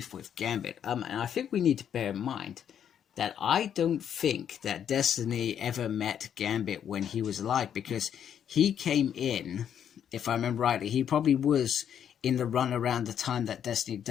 with Gambit. And I think we need to bear in mind that I don't think that Destiny ever met Gambit when he was alive, because he came in, if I remember rightly, he probably was in the run around the time that Destiny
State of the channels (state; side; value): quieter; right; 9.0 dB